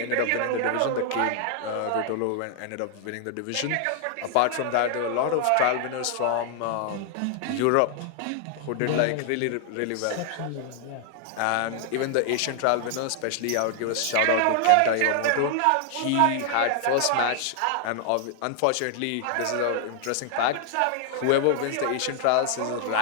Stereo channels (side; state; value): both; different; correlation 0.00